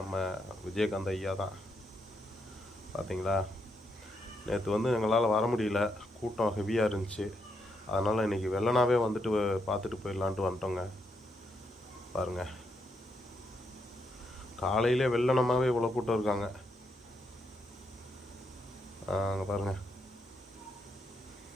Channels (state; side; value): normal; both; correlation 0.79